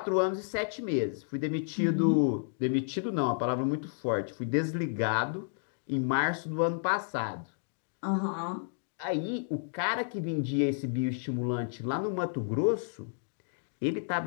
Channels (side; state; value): right; silent; digital silence